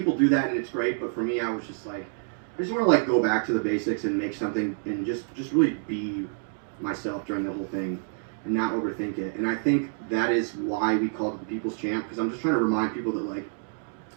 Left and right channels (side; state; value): left; silent; digital silence